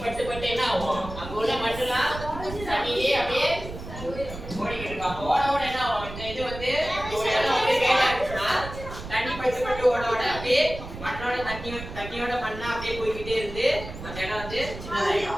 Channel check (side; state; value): right; noise; rumble, 11 dB below the sound